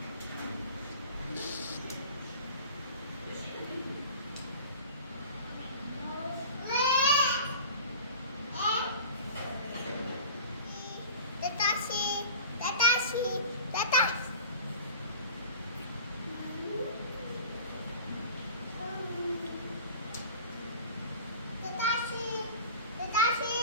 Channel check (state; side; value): inverted; both; correlation -0.39